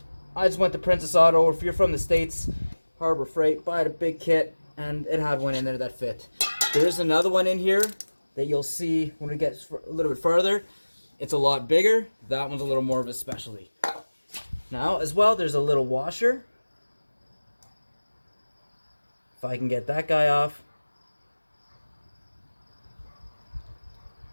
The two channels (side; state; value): both; inverted; correlation -1.00